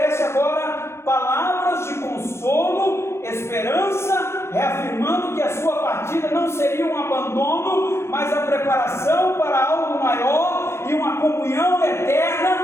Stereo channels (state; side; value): late; right; 0.13 ms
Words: agora palavras de consolo, esperança, reafirmando que a sua partida não seria um abandono, mas a preparação para algo maior e uma comunhão